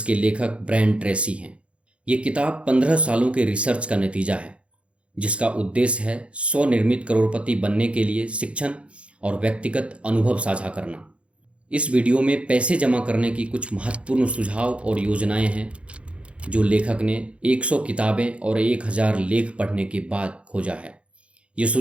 लेखक ब्रायन ट्रेसी हैं। ये किताब 15 सालों के रिसर्च का नतीजा है, जिसका उद्देश्य है स्वनिर्मित करोड़पति बनने के लिए शिक्षण और व्यक्तिगत अनुभव साझा करना। इस वीडियो में पैसे जमा करने की कुछ महत्वपूर्ण सुझाव और योजनाएं हैं जो लेखक ने 100 किताबें और 1000 लेख पढ़ने के बाद खोजा है। ये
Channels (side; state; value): left; late; 0.061 ms